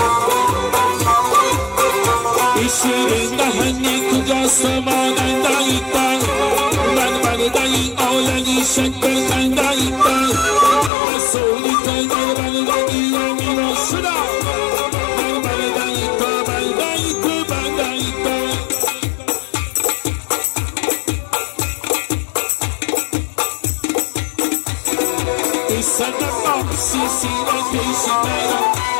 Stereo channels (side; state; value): right; drops out; at 10.9 s